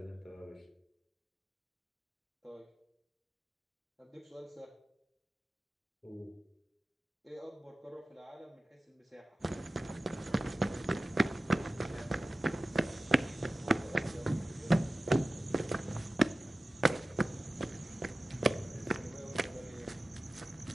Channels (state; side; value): normal; both; correlation 0.95